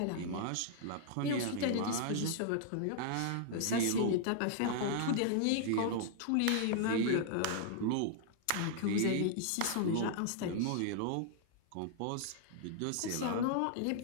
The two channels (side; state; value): both; different; correlation -0.01